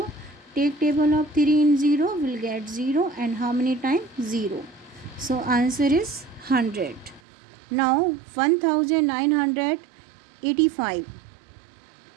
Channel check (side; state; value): left; drops out; at 7.2 s